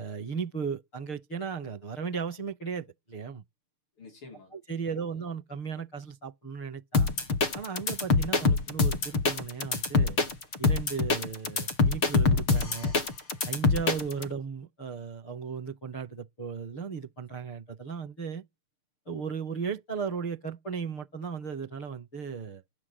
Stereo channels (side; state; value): right; late; 6.7 ms